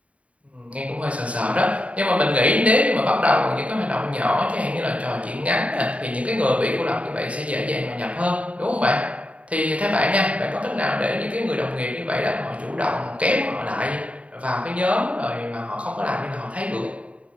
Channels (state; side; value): late; left; 0.065 ms